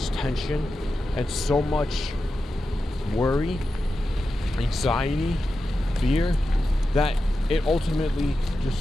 tension, and so much worry, anxiety, fear, that it ultimately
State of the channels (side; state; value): both; normal; correlation 0.91